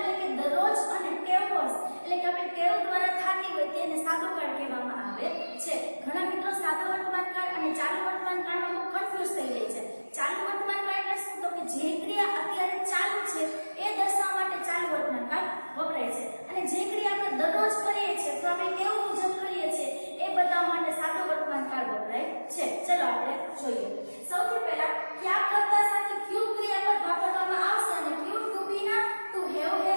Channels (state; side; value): inverted; both; correlation -1.00